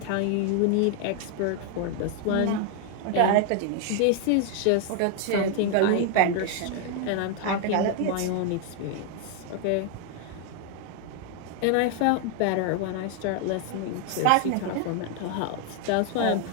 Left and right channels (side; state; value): both; different; correlation 0.00